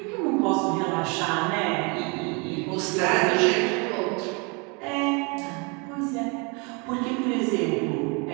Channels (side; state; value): left; quieter; 31.5 dB